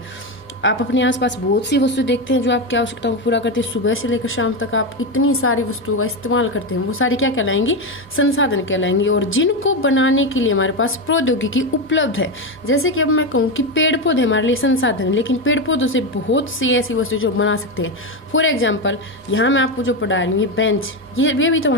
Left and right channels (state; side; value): normal; both; correlation 0.12